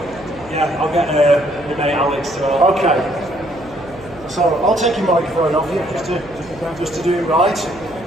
Yeah, I'll get my mate Alex to. Okay. So I'll take your microphone off you just to do it right.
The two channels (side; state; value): right; noise; hum, 22 dB below the sound